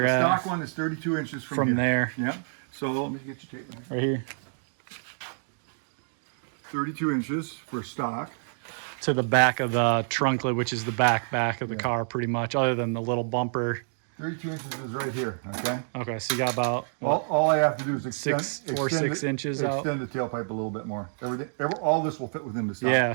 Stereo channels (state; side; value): silent; left; digital silence